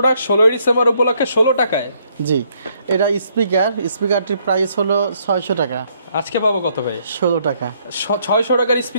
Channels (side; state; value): both; inverted; correlation -0.70